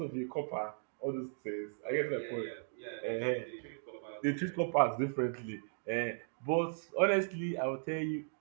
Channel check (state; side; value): silent; left; digital silence